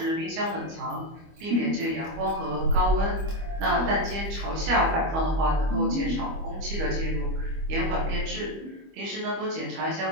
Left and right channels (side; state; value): left; late; 25 ms